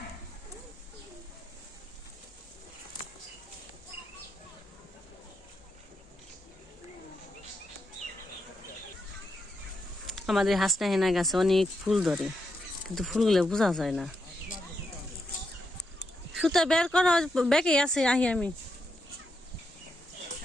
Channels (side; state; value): both; normal; correlation 0.83